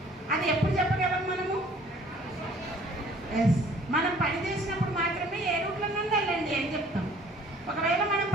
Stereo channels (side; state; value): both; normal; correlation 0.55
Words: అది ఎప్పుడు చెప్పగలం మనము? ఎస్, మనం పని చేసినప్పుడు మాత్రమే ఏ రూట్లో నుండి వెళ్ళండి అని చెప్తాం. ఒకవేళ మనం